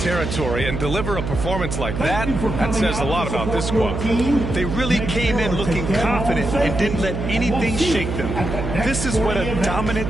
and deliver a performance like that, that says a lot about this squad. They really came in looking confident and didn't let anything shake them. This is what a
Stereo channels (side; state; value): right; noise; hum, 4 dB below the sound